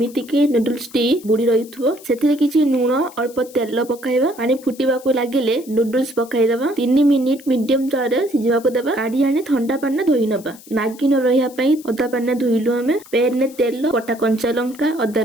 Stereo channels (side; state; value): left; noise; hiss, 21 dB below the sound